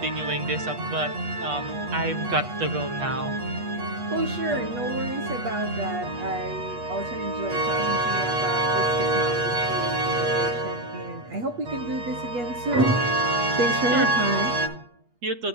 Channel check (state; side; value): late; left; 8.3 ms